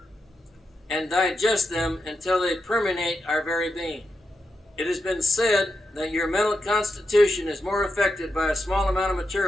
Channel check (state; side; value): normal; both; correlation 0.87